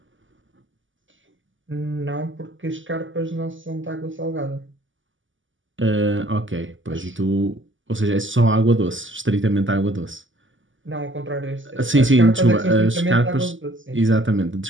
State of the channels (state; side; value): late; left; 0.56 ms